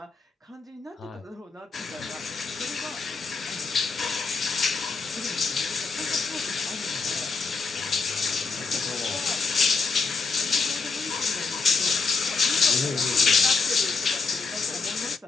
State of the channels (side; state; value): right; quieter; 4.5 dB